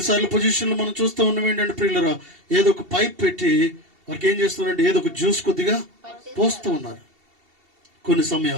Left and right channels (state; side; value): late; left; 2.7 ms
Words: పొజిషన్లో మనం చూస్తూ ఉన్నాం ఏంటంటే ప్రియులరా, ఏదో ఒక పైప్ పెట్టి వారికి ఏం చేస్తున్నారంటే ఏదో ఒక జ్యూస్ కొద్దిగా పోస్తూ ఉన్నారు కొన్ని